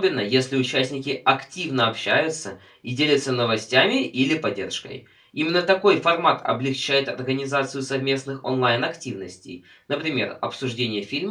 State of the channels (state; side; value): identical; both; correlation 1.00